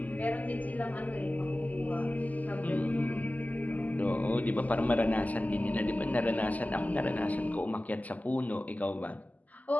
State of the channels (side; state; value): right; late; 0.078 ms